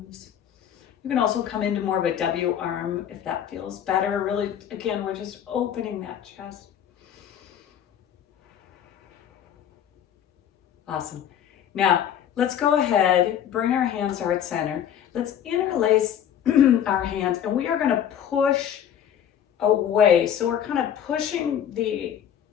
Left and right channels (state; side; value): quieter; right; 9.5 dB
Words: You can also come into more of a W arm if that feels better. Really, again, we're just opening that chest. Awesome. Now, let's go ahead, bring our hands to heart center. Let's interlace our hands, and we are going to push away. So we're kind of pushing